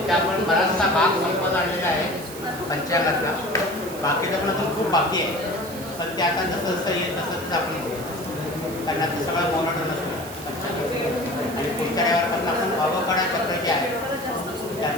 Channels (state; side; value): noise; right; hiss, 14 dB below the sound